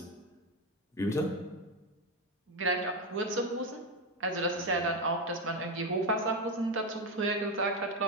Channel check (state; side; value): normal; both; correlation 0.12